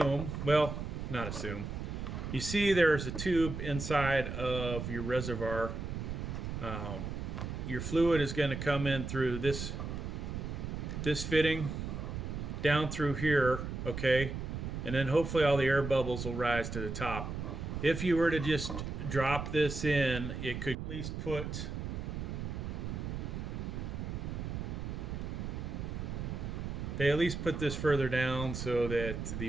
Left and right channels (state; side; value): noise; right; rumble, 5 dB below the sound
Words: well, not assume, you see there's a tube inside of your reservoir. Your fluid is going to come in through this fitting down through here, okay, and then hopefully all the air bubbles will rise to the top. If you were to just drop this in, it could at least put this further down so that the